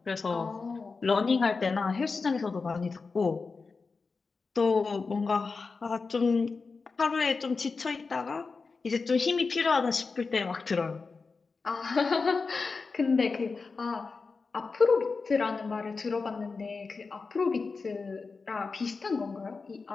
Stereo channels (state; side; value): quieter; right; 4.4 dB